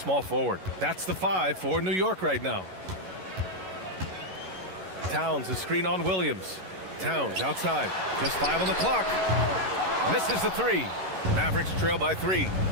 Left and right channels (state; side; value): late; left; 11 ms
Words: forward. That's the 5 for New York right now. Towns, a screen on Williams. Towns outside, just 5 on the clock. Misses the 3. Mavericks trail by 3.